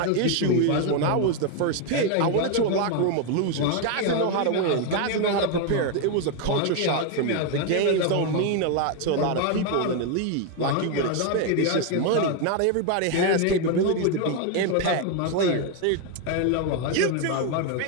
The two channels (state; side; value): different; both; correlation 0.01